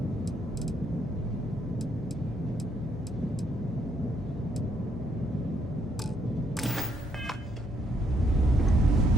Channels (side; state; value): both; normal; correlation 0.72